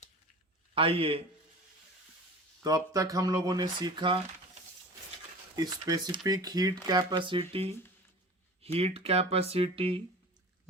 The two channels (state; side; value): normal; both; correlation 0.38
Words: आइए, तो अब तक हम लोगों ने सीखा specific heat capacity,